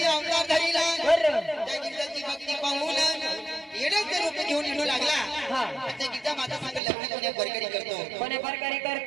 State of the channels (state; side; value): drops out; left; at 6.8 s